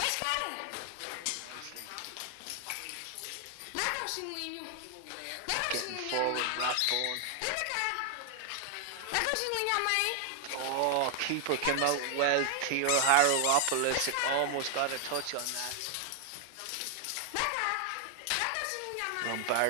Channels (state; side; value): different; both; correlation 0.00